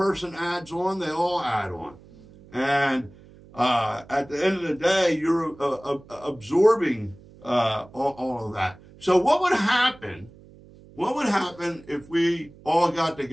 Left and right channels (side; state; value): right; noise; hum, 23 dB below the sound